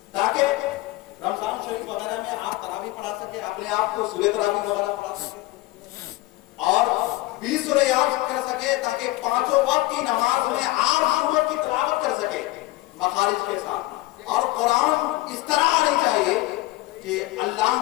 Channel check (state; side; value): quieter; right; 19.2 dB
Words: تاکہ رمضان شریف وغیرہ میں آپ تراویح پڑھا سکے، اپنے آپ کو سورہ تراویح وغیرہ پڑھا سکے اور 20 سورہ یاد کر سکے تاکہ 5 وقت کی نماز میں آپ سورت کی تلاوت کر سکے مخارج کے ساتھ. اور قرآن اس طرح آنی چاہیے کہ اللہ،